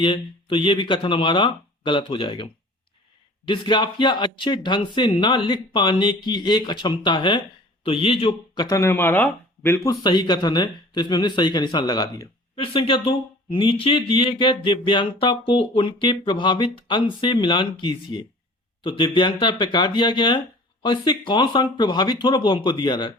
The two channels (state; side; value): normal; both; correlation 0.45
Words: है, तो ये भी कथन हमारा गलत हो जाएगा। डिस्ग्राफिया अच्छे ढंग से ना लिख पाने की एक अक्षमता है, तो ये जो कथन है हमारा बिल्कुल सही कथन है, तो इसमें हमने सही का निशान लगा दिया। फिर संख्या 2, नीचे दिए गए दिव्यांगता को उनके प्रभावित अंग से मिलान कीजिए। तो दिव्यांगता प्रकार दिया गया है, और इससे कौन सा अंग प्रभावित हो रहा है वो हमको दिया रहा है।